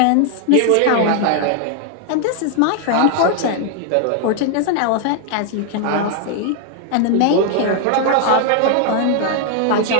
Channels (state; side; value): different; both; correlation 0.00